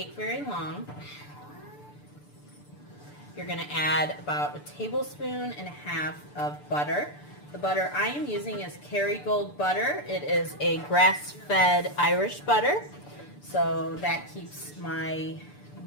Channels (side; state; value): right; late; 6.8 ms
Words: very long, you're going to add about 1.5 tablespoons of butter. The butter I am using is Kerrygold butter. It is a grass-fed Irish butter, so that keeps my